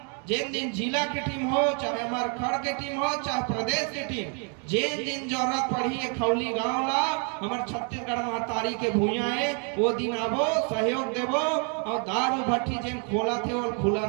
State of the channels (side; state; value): left; quieter; 39.4 dB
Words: जिन दिन जिला की टीम हो, चाहे हमारे खड़ के टीम हो, चाहे प्रदेश की टीम, जिन दिन जरूरत पड़ी है खौली गांव ला हमारे छत्तीसगढ़ महतारी के भूया है, वो दिन आबो, सहयोग देबो। और दारू भट्टी जिन खोला थे वो खुला